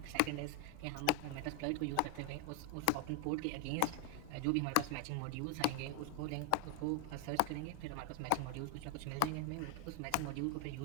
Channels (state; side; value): different; both; correlation 0.01